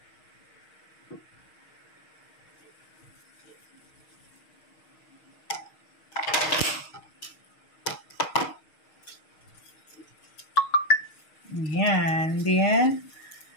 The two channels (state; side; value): late; right; 6.4 ms